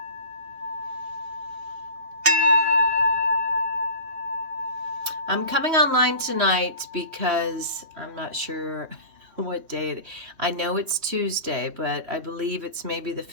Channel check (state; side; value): late; left; 3.0 ms